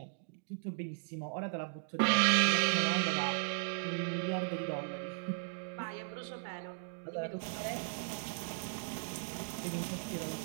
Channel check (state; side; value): silent; left; digital silence